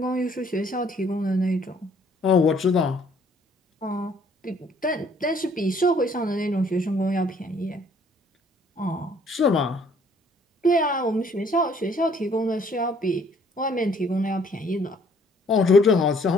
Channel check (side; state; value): both; normal; correlation 0.61